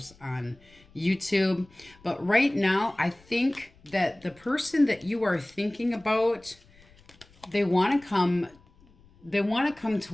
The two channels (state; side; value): noise; left; rumble, 28 dB below the sound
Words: on YouTube. But right now, I think that the person that you are thinking about, they want to come